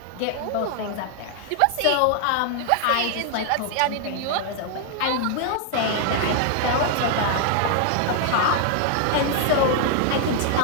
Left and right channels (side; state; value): both; different; correlation 0.00